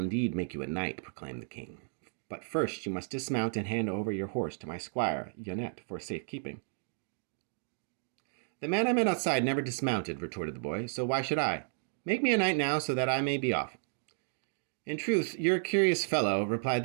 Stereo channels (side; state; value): left; silent; digital silence